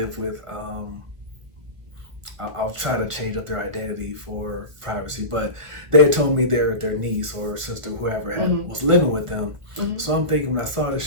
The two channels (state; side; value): late; left; 1.3 ms